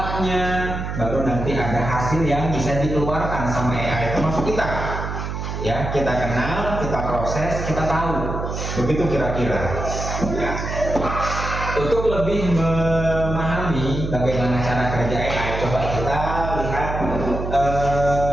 baru nanti ada hasil yang bisa dikeluarkan sama AI, termasuk kita, ya. Kita kenal, kita proses, kita tahu, begitu kira-kira, ya. Untuk lebih memahami bagaimana cara kerja AI, coba kita lihat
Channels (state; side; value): noise; right; hum, 5 dB below the sound